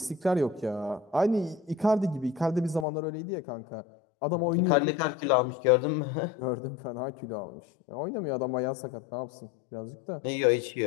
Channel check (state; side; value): drops out; right; at 2.9 s